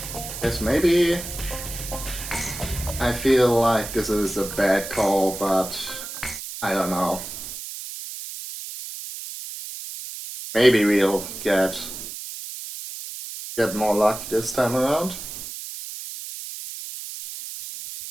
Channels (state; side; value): noise; right; hiss, 9 dB below the sound